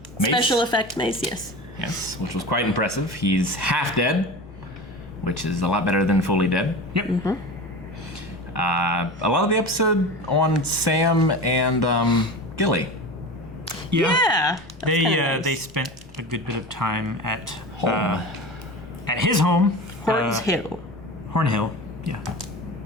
mace. Special effect mace, yes. Yes, which was quite impressive. He's half dead, which is a lot better than fully dead. Yep. Mm-hmm. A lot of the episode on Sam and Gilly. Yeah. They spent a good bit of time at Home. at his home. Horns Hill. Hornhill. Yeah.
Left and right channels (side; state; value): both; normal; correlation 0.31